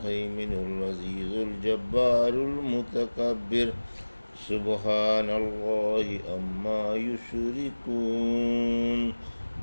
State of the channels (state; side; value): inverted; both; correlation -1.00